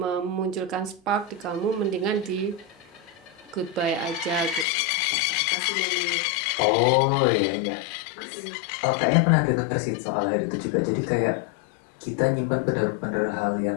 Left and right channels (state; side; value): drops out; right; at 4.7 s